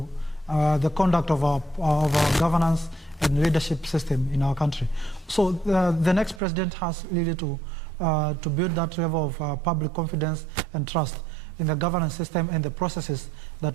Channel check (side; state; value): left; drops out; at 6.4 s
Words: the conduct of our governance and leadership system in our country. So the next president has really to build that level of public confidence and trust in the governance system and the processes